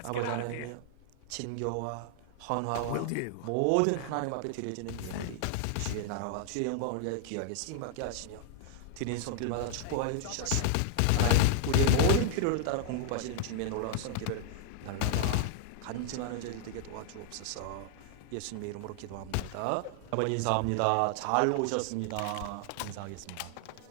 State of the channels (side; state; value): both; different; correlation 0.00